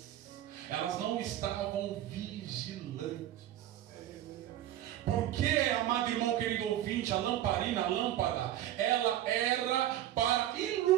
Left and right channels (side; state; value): left; quieter; 12.7 dB